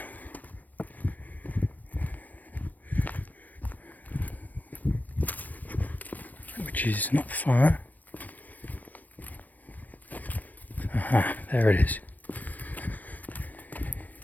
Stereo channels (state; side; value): late; right; 0.082 ms